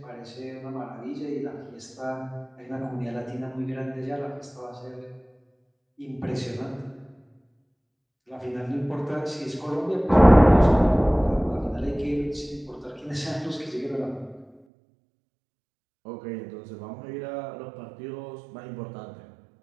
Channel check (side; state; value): left; drops out; at 14.6 s